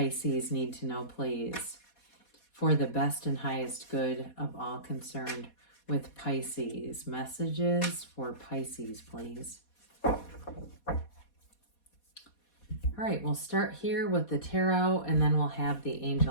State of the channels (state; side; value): late; right; 4.2 ms